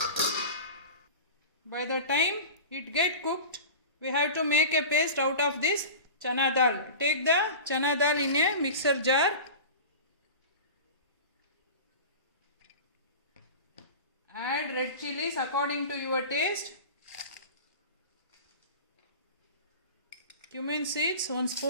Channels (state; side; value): inverted; both; correlation -0.33